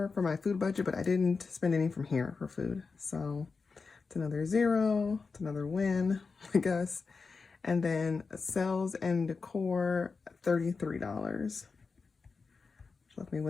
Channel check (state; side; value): quieter; right; 4.6 dB